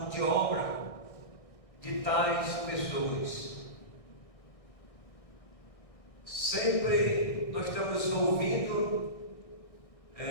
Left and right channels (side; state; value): right; late; 1.6 ms